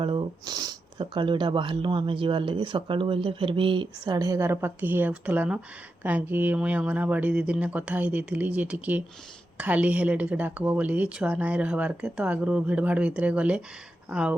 यहाँ बाहरलु आम जीवार लगे सकाळु बोलते फिर भी 11:30 पाखि ही आसला न कहीं मुई अंगनवाड़ी दीदी ने कथा ही देती जे टिके खाली हेले टिके डाकब बोली छुआ नाई रहबार के। तो आगु भिड़ भाड़ भितर गले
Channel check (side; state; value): both; normal; correlation 0.88